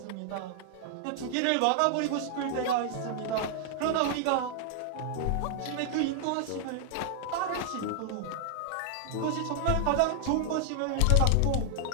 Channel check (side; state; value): both; different; correlation 0.00